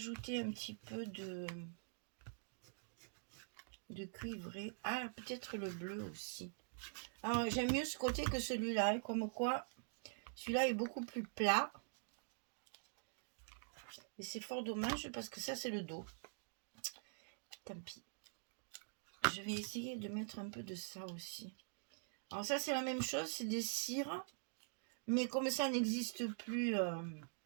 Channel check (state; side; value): silent; left; digital silence